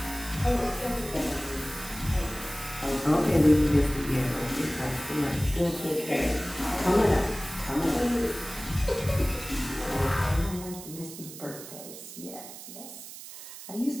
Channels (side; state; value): right; noise; hiss, 13 dB below the sound